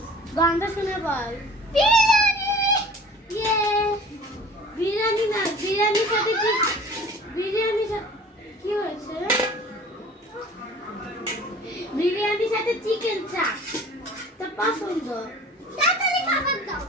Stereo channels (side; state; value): both; normal; correlation 0.45